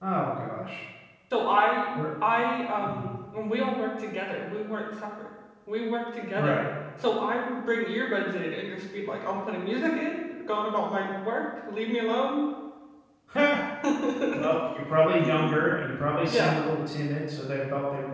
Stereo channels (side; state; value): both; identical; correlation 1.00